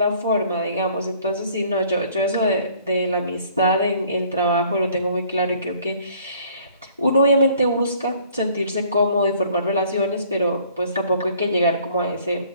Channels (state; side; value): inverted; both; correlation -0.57